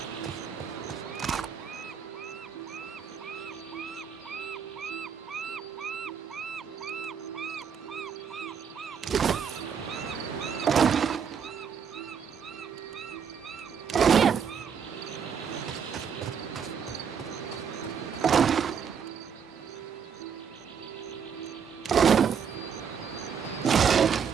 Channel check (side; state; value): left; quieter; 7.1 dB